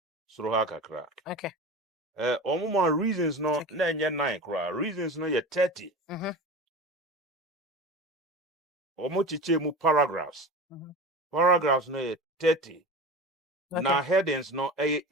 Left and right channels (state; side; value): normal; both; correlation 0.31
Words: Suruha kakra. Okay. Omuma reasons no na nye 9 kra. Reasons no ye 30. Omo chiche mu paragraphs. Paragraphs no ye 30. Na headings no